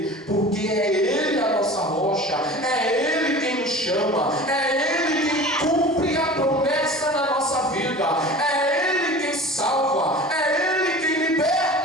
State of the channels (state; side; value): normal; both; correlation 0.38